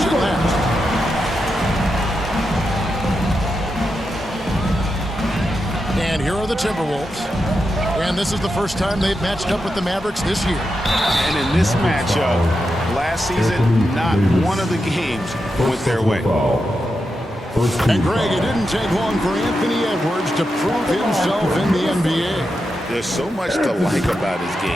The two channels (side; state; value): both; normal; correlation 0.87